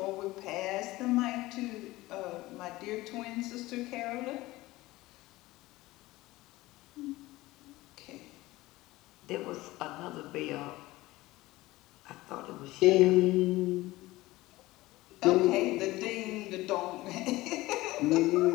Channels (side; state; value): right; quieter; 18.8 dB